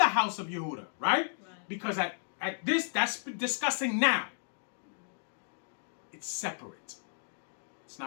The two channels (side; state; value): right; silent; digital silence